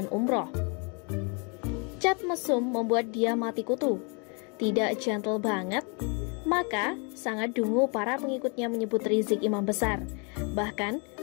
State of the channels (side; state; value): right; quieter; 35.1 dB